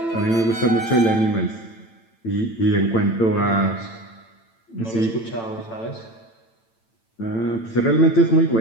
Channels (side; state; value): right; late; 8.9 ms